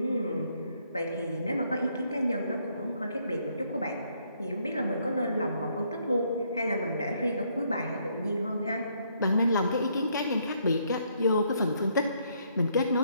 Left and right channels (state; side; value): inverted; both; correlation -0.70